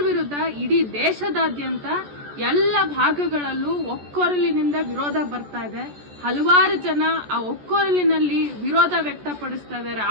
ವಿರುದ್ಧ ಇಡೀ ದೇಶದಾದ್ಯಂತ ಎಲ್ಲ ಭಾಗಗಳಲ್ಲೂ ಒಕ್ಕೊರಲಿನಿಂದ ವಿರೋಧ ಬರ್ತಾ ಇದೆ. ಹಲವಾರು ಜನ ಆ ಒಕ್ಕೊರಲಿನಲ್ಲಿ ವಿರೋಧ ವ್ಯಕ್ತಪಡಿಸ್ತಾ ಇದ್ದಾರೆ,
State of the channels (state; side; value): late; left; 14 ms